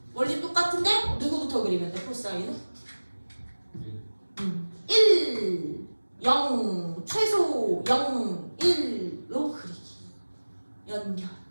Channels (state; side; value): inverted; both; correlation -1.00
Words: 원리 똑같은데 누구부터 그리면 돼? 코사인은 1 0 최소 0 1로 그리기. 연결